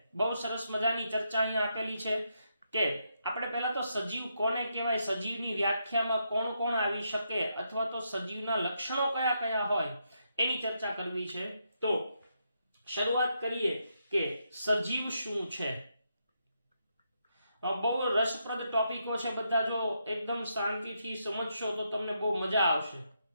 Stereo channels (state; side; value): inverted; both; correlation -0.80